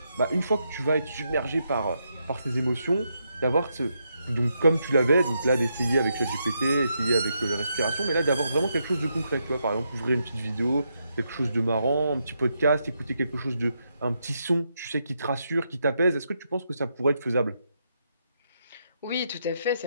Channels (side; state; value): both; inverted; correlation -0.81